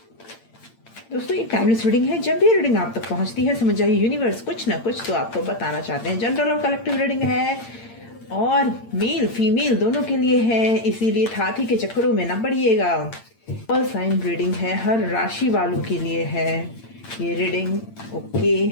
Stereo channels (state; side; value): late; right; 8.8 ms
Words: दोस्तों, ये टाइमलेस रीडिंग है। जब भी रीडिंग आप तक पहुंचती है, समझ जाइए यूनिवर्स कुछ ना कुछ तो आपको बताना चाहते हैं। जनरल और कलेक्टिव रीडिंग है और मेल फीमेल दोनों के लिए है, इसीलिए हाथी के चक्करों में ना पड़िएगा। ऑल साइन रीडिंग है, हर राशि वालों के लिए है ये रीडिंग।